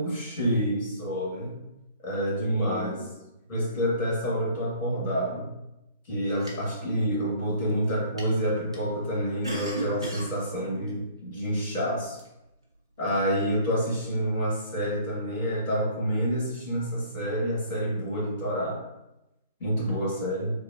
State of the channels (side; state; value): both; inverted; correlation -0.54